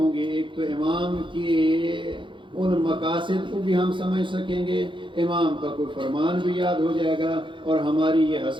گی. ایک تو امام کی ان مقاصد کو بھی ہم سمجھ سکیں گے، امام کا کوئی فرمان بھی یاد ہو جائے گا اور ہماری یہ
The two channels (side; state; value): left; late; 0.24 ms